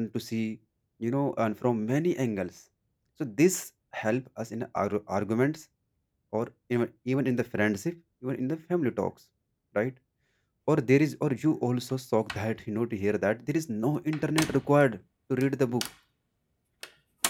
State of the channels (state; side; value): identical; both; correlation 1.00